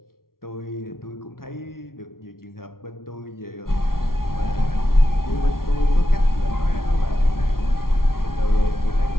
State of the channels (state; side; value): late; right; 0.93 ms